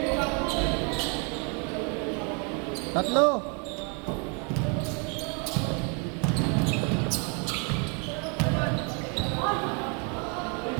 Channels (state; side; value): quieter; left; 35.9 dB